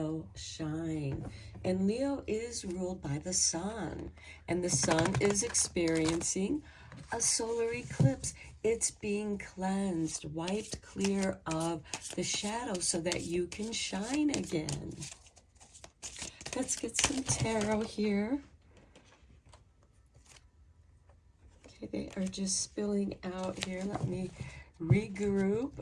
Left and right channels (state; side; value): identical; both; correlation 1.00